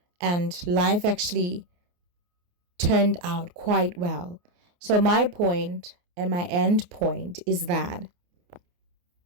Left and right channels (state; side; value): late; left; 28 ms